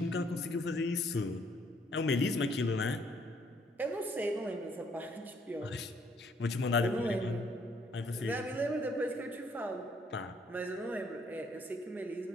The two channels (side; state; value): both; normal; correlation 0.67